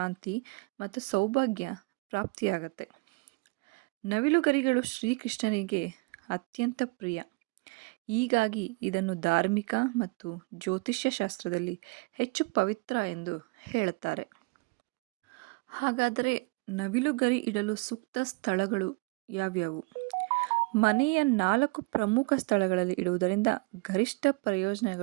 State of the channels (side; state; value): left; quieter; 26.9 dB